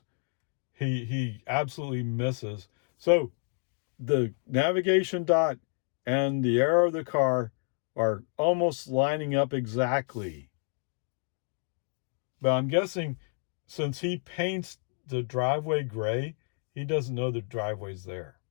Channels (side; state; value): right; silent; 55 dB below the other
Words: he absolutely misses. So the navigation dot and the arrow of the car are almost lining up exactly. But I'm guessing since he paints the driveway gray, he doesn't know the driveway's there.